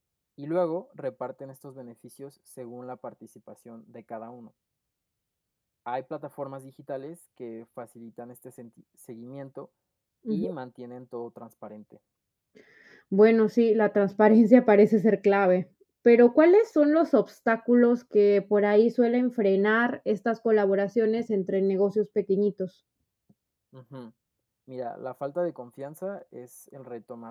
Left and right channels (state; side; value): identical; both; correlation 1.00